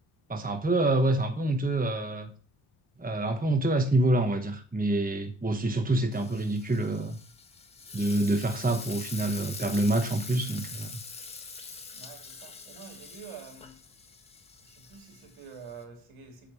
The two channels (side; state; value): both; normal; correlation 0.63